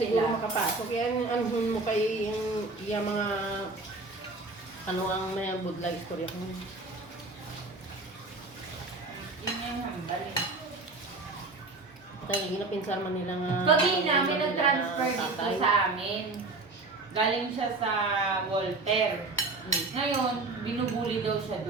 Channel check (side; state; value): left; quieter; 3.4 dB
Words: siguro sila. makapasok. Kaya anuhun mo kay yung mga ano ang may budla istorya ko. Yun yung hambal eh. Tayo ginapinsan man nila nga. Pag namin nag-transfer dito sa amin. Galing siya sa Walter. Ngayon, binubuli daw siya